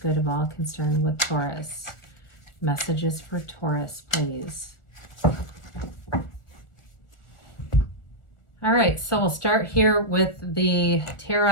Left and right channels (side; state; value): right; late; 1.4 ms